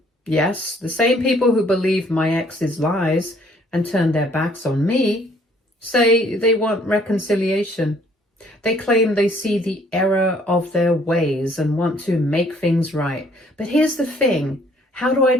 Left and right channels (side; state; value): both; normal; correlation 0.61